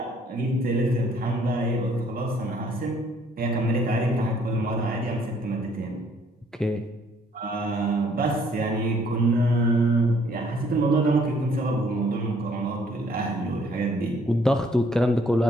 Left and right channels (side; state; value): both; normal; correlation 0.63